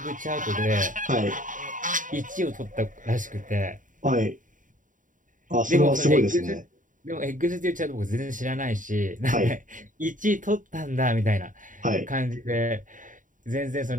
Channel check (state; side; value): late; left; 0.38 ms